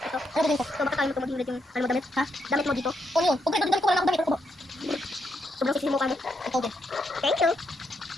Ito. Ano ba dito? So, baka tayo maging red yung, ano mo, damit? Ha? Damit mo dito? O yun. Kung red, damit ko lang ako damit. Ano ba? Sobrang sisi mo ka mo. Ito din. Thank you.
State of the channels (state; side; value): normal; both; correlation 0.79